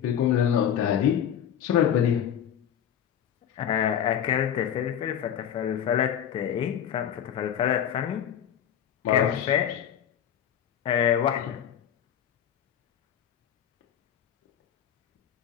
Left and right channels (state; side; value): quieter; right; 9.4 dB